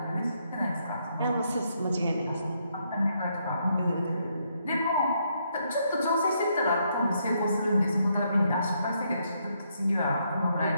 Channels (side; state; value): both; inverted; correlation -0.75